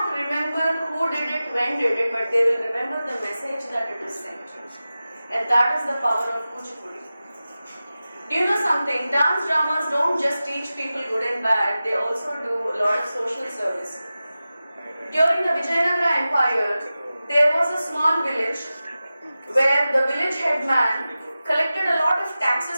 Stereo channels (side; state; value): both; inverted; correlation -0.95